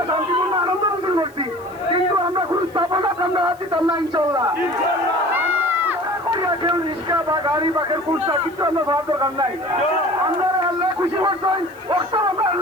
শান্তিপূর্ণ আনন্দ মিছিল করছি, কিন্তু আমরা কোনো স্থাপনা আমরা দিতাম না ইনশাল্লাহ। কেউ রিক্সা বা গাড়ি বা কেউ কুর্তা কিছু আমরা ভাবার দরকার নাই। আমরা আল্লাহ খুশি করছেন, আমরা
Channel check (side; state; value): right; noise; hiss, 27 dB below the sound